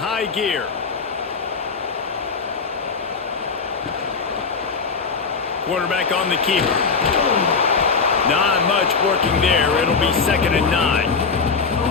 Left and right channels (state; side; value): quieter; right; 5.0 dB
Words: gear. Quarterback on the keeper. Not much working there. It'll be 2nd and 9.